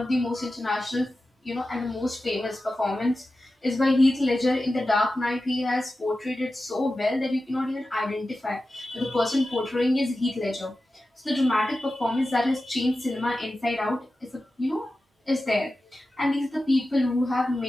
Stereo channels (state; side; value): normal; both; correlation 0.93